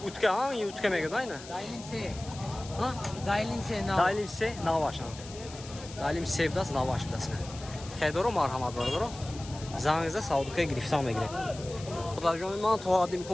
Utka ha? İyi utka mega da yine. Dailinse. Ha? Dailinse nav. Dalim se navaşan. Dalim sevdas navaş bilasın. Xeydoro marhamat bardoro. Zangizda Saudukaya giriftan megire. Darjomi man to adim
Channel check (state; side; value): noise; left; hiss, 16 dB below the sound